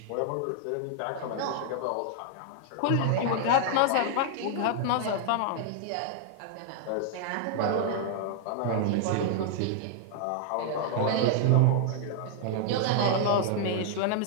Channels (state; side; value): different; both; correlation 0.00